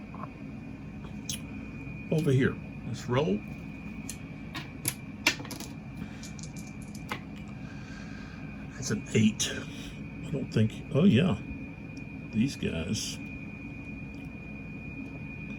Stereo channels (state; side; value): identical; both; correlation 1.00